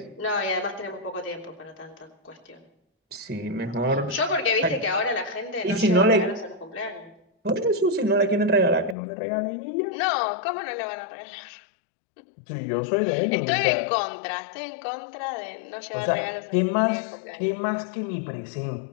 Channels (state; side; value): drops out; right; at 9.0 s